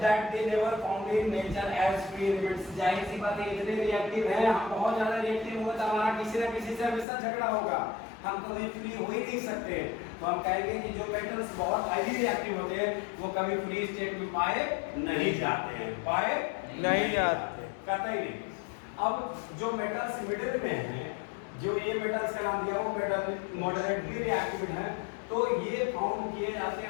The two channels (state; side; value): drops out; right; at 7.1 s